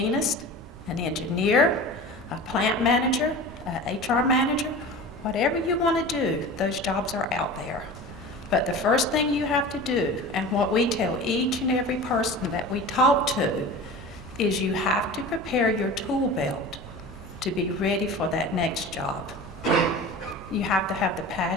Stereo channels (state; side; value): normal; both; correlation 0.35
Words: an engineer, a plant manager, an HR manager, whatever you want to do, those jobs are out there. But the first thing you have to do, and what we tell each and every person that we talk to, is you have to prepare your tool belt to be ready for that next job. You have to have the